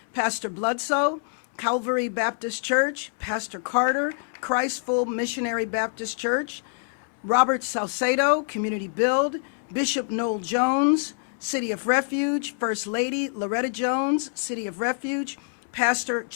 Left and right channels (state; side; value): silent; right; digital silence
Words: Pastor Bloodsoe, Calvary Baptist Church, Pastor Carter, Christ Full Missionary Baptist Church, Robert Salcedo, Community Build, Bishop Noel Jones, City of Refuge, First Lady Loretta Jones, City of Refuge, Pastor